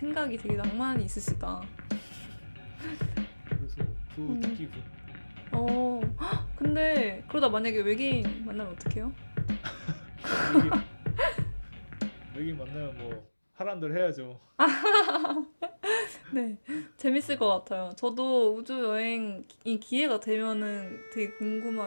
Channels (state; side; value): inverted; both; correlation -1.00